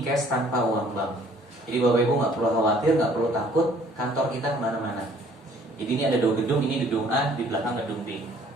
tanpa uang bank. Jadi Bapak Ibu nggak perlu khawatir, nggak perlu takut, kantor kita kemana-mana. Jadi ini ada dua gedung, ini gedung A, di belakang gedung B.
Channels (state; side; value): normal; both; correlation 0.58